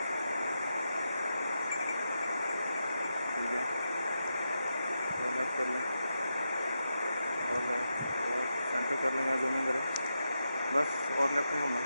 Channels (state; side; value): inverted; both; correlation -0.87